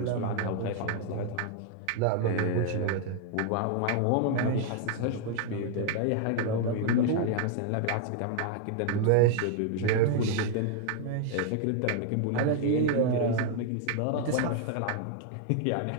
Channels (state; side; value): different; both; correlation 0.00